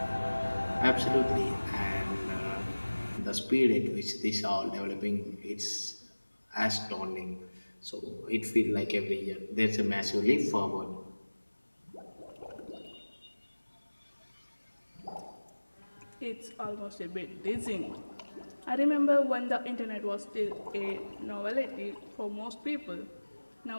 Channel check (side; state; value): both; inverted; correlation -1.00